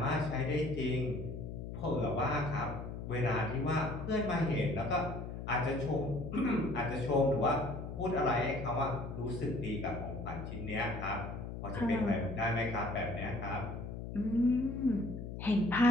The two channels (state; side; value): noise; left; hum, 7 dB below the sound